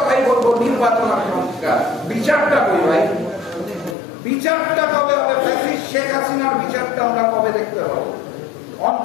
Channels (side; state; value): right; drops out; at 4.0 s